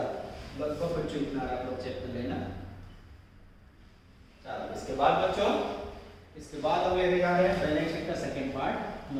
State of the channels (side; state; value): both; identical; correlation 1.00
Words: लगभग बच्चों इतना आ रहा है, चेक कर लेना। चलो इसके बाद बच्चों, इसके बाद हम लेने जा रहे हैं बैलेंस शीट का सेकंड पार्ट।